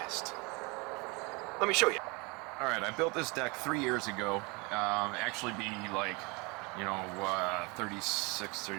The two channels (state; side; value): quieter; left; 28.1 dB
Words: Let me show you. Alright, I built this deck 3 years ago. Actually be like, 36,